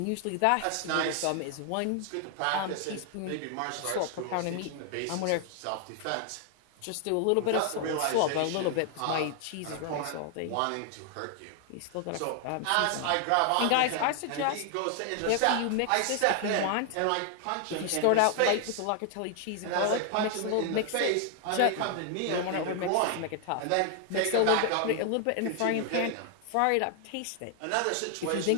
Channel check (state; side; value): different; both; correlation 0.00